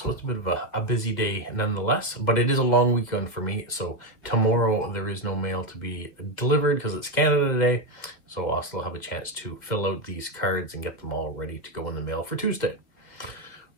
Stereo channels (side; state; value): right; late; 2.1 ms